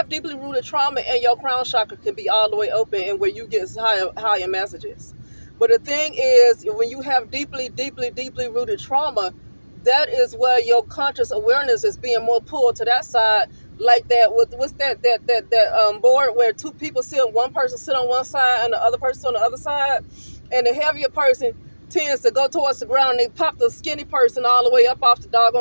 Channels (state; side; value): inverted; both; correlation -1.00